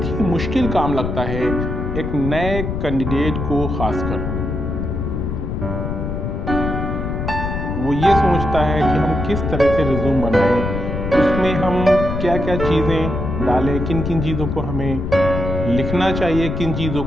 ही मुश्किल काम लगता है एक नए कैंडिडेट को खासकर। वो ये सोचता है कि हम किस तरह से रिज्यूम बनाएं, उसमें हम क्या क्या चीज़ें डालें, किन किन चीज़ों को हमें लिखना चाहिए, किन चीज़ों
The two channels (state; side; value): noise; left; rumble, 3 dB below the sound